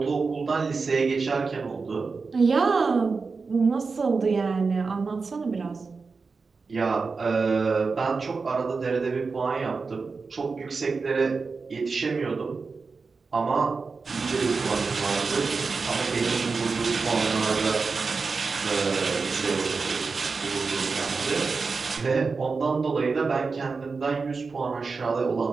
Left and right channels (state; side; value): quieter; left; 4.5 dB